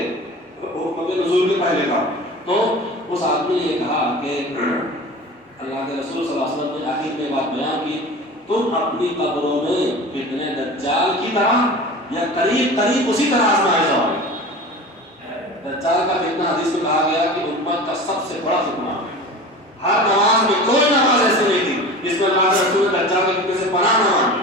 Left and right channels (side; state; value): both; normal; correlation 0.35